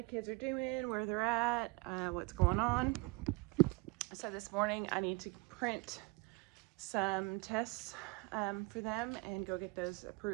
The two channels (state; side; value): quieter; left; 23.8 dB